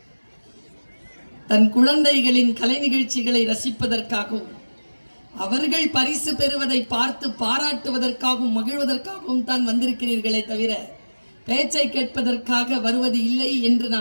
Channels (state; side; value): inverted; both; correlation -1.00